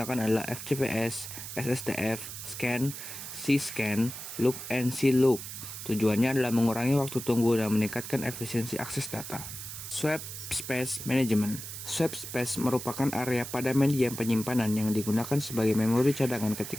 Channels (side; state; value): right; noise; hiss, 9 dB below the sound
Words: adalah FCPS, SSTF, Scan, C-Scan, Look, and C-Look. Tujuannya adalah mengurangi waktu tunggu dan meningkatkan efisiensi akses data. Swap Space Management. Swap space merupakan area pada medium penyimpanan yang digunakan sebagai memori cadangan